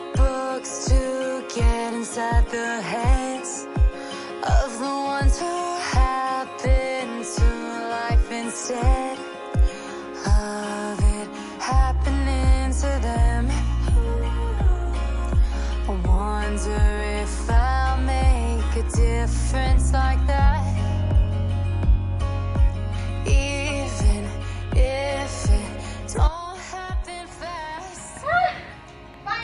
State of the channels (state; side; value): identical; both; correlation 1.00